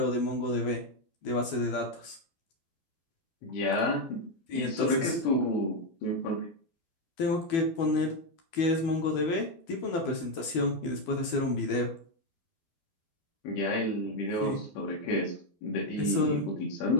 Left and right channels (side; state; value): right; late; 12 ms